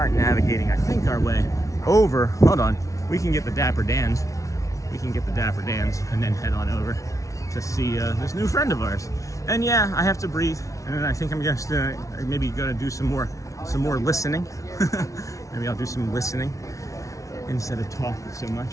navigating, I think, our way over. Hold on, we can get the Dapper Dans. We can get the Dapper Dans and then head on over to see this new friend of ours. And yeah, I have to breathe, and then I think I'm just maybe gonna do some more listening. Maybe I'll do some listening instead of talking so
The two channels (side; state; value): right; late; 0.16 ms